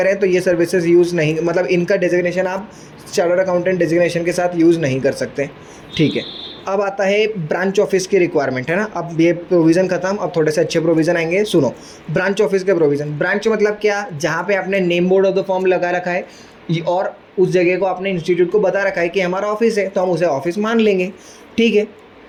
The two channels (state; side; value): identical; both; correlation 1.00